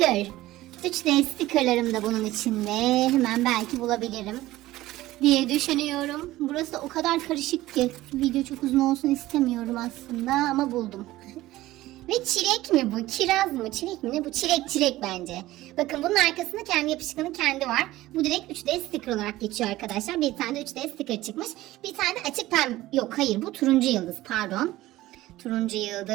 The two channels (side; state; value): left; quieter; 16.7 dB